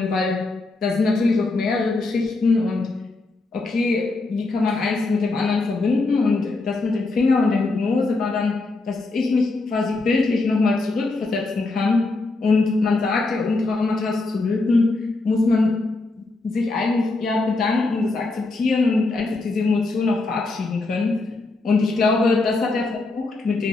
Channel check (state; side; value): quieter; right; 3.3 dB